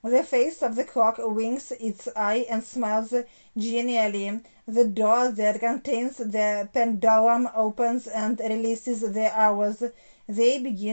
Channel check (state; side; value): inverted; both; correlation -1.00